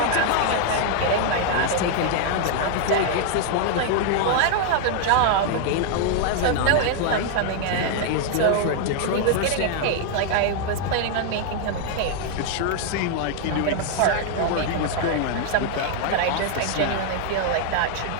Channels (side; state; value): both; different; correlation 0.00